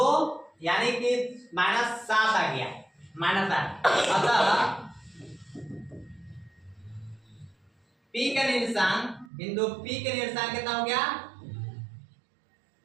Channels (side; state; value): left; drops out; at 9.3 s